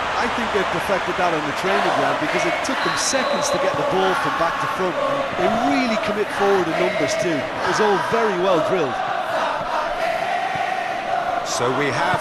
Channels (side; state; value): both; identical; correlation 1.00